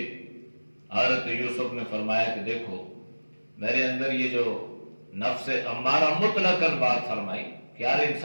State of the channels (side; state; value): both; inverted; correlation -1.00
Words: حضرت یوسف نے فرمایا کہ دیکھو میرے اندر یہ جو نفس امارہ مطلقاً بات فرمائی کہ ہر